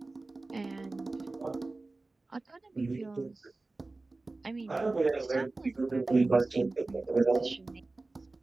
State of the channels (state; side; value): quieter; left; 3.3 dB